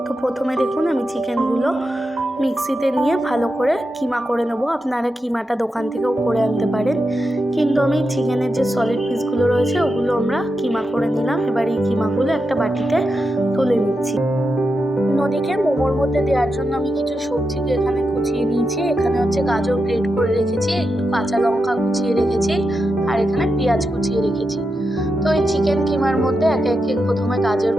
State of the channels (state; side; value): normal; both; correlation 0.88